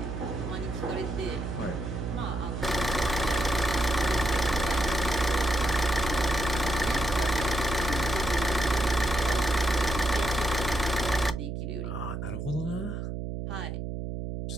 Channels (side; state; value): right; noise; hum, 4 dB below the sound